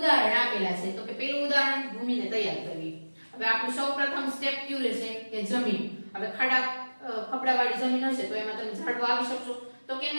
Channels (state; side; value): inverted; both; correlation -1.00